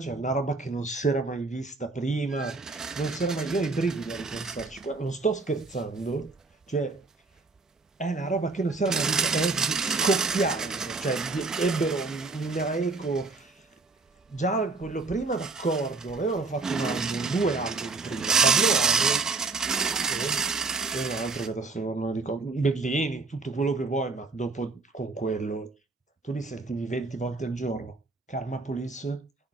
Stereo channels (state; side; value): quieter; left; 3.8 dB